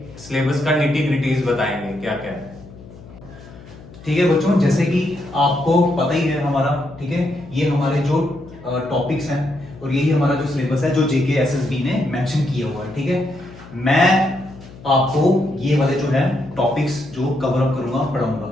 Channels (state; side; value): noise; left; hum, 19 dB below the sound